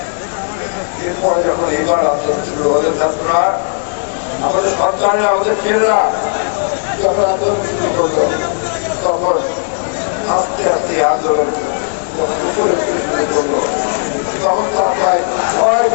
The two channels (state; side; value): silent; right; 70 dB below the other